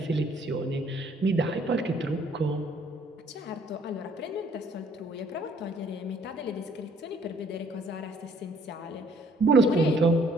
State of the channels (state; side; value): normal; both; correlation 0.61